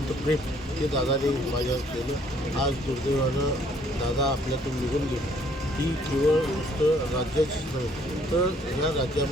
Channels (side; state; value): both; normal; correlation 0.63